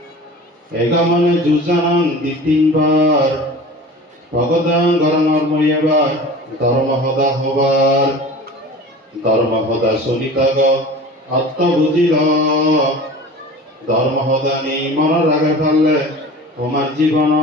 এগামনে যুজানাং তিনবার ভগদাং গরমর্ময়েবার ধর্ম হদা হবার ধর্ম হদা শুনিতাগ আত্ম বুঝিল ধর্ম হদা নেই মনের আগে ফেললে তোমার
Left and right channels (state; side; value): normal; both; correlation 0.38